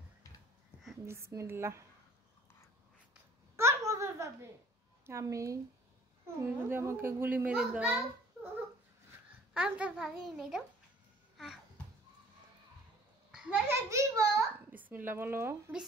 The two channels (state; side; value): normal; both; correlation 0.51